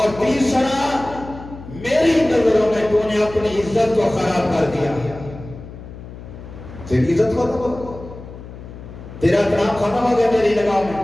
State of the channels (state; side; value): noise; left; hum, 14 dB below the sound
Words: تیسرا، میری نظروں میں تو نے اپنی عزت کو خراب کر دیا، تیری عزت ختم ہو، تیرا احترام ختم ہو گیا میری نگاہ میں،